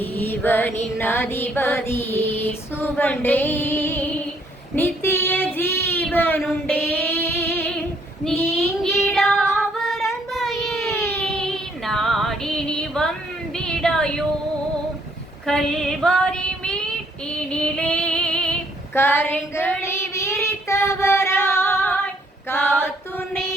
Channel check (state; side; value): normal; both; correlation 0.67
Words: அதிபதி இயேசுவண்டே நித்திய ஜீவனுண்டே நீங்கிடாவர் அன்பையே நாடி நீ வந்திடாயோ. கல்வாரி மீட்டினிலே கரங்களை விரித்தவராய் காத்துன்னை